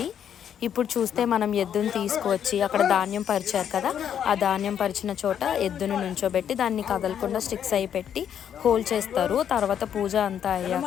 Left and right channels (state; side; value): quieter; right; 9.0 dB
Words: ఇప్పుడు చూస్తే మనం ఎద్దుని తీసుకువచ్చి అక్కడ ధాన్యం పరిచారు కదా, ఆ ధాన్యం పరిచిన చోట ఎద్దును నుంచోబెట్టి దాన్ని కదలకుండా స్టిక్స్ అయి పెట్టి హోల్ చేస్తారు. తర్వాత పూజ అంతా